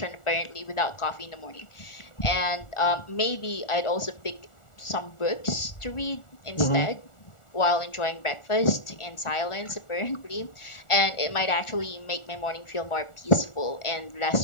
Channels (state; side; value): late; right; 1.4 ms